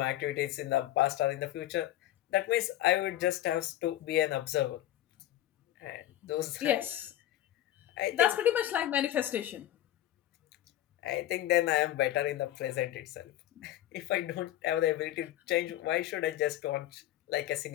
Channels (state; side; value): quieter; right; 13.4 dB